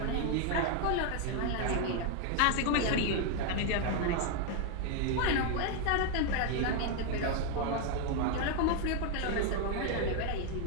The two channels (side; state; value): both; different; correlation 0.01